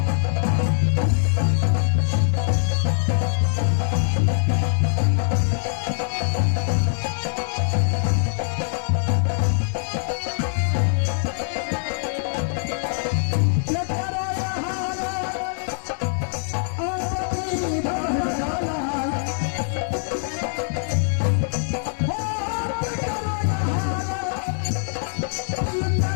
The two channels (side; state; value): right; silent; digital silence